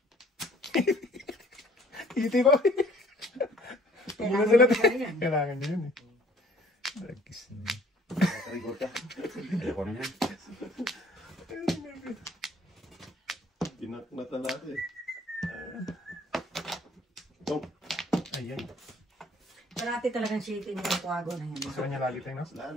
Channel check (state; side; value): normal; both; correlation 0.57